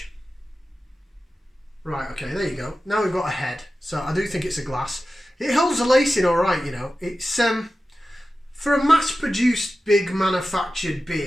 Right, okay, there you go. Now we've got a head. So I do think it's a glass. It holds the lacing all right, you know. It's for a mass-produced, big manufactured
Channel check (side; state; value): both; normal; correlation 0.94